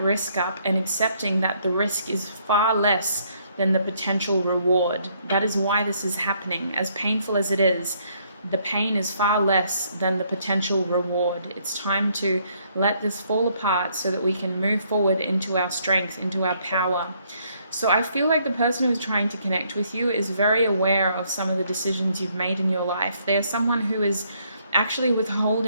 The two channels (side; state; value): both; inverted; correlation -0.69